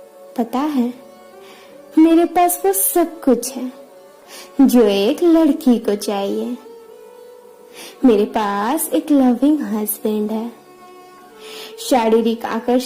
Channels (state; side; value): identical; both; correlation 1.00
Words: पता है, मेरे पास वो सब कुछ है जो एक लड़की को चाहिए। मेरे पास एक लविंग हस्बैंड है। शारीरिक